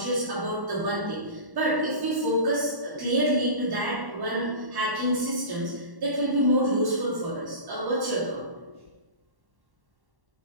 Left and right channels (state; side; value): late; left; 1.1 ms